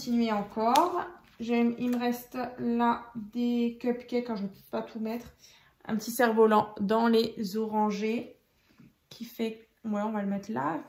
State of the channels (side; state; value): both; identical; correlation 1.00